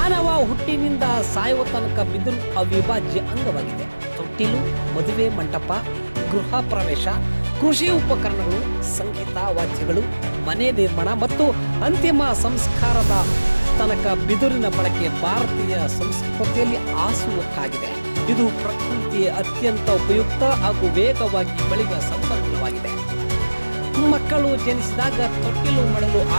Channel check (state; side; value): inverted; both; correlation -1.00